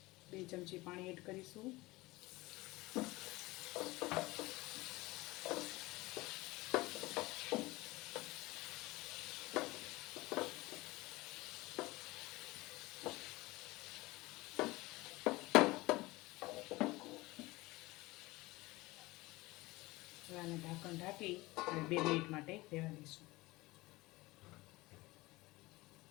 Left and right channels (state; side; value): quieter; right; 20.9 dB